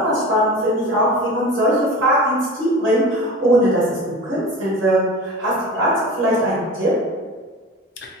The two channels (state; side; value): normal; both; correlation 0.33